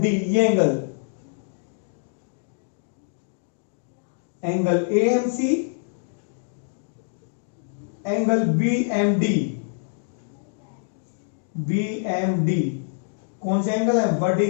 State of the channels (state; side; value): silent; right; digital silence